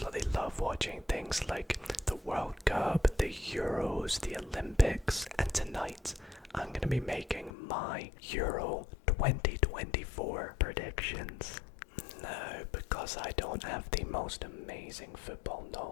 love watching things like the World Cup, the Euros, the Olympics, and tonight I'm going to be making my Euro 2024 predictions. No, because I don't have the most amazing football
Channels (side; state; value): right; drops out; at 7.5 s